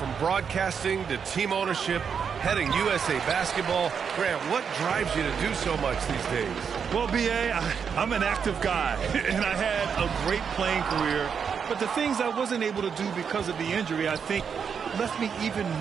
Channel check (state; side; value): quieter; left; 6.8 dB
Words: broadcasting to team ownership, heading USA basketball, Grant, what drives you to do so much these days? Well, B.A., I'm an active guy, and I had a great playing career. But the things I wasn't able to do because of the injury, I think, left me even